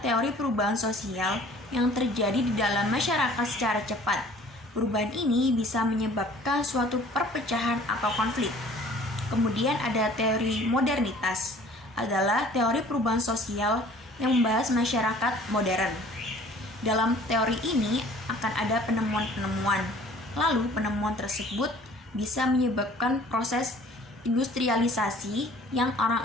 teori perubahan sosial yang terjadi di dalam masyarakat secara cepat. Perubahan ini bisa menyebabkan suatu perpecahan atau konflik. Kemudian ada teori modernitas, adalah teori perubahan sosial yang membahas masyarakat modern. Dalam teori ini akan ada penemuan-penemuan. Lalu penemuan tersebut bisa menyebabkan proses industrialisasi yang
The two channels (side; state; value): both; normal; correlation 0.51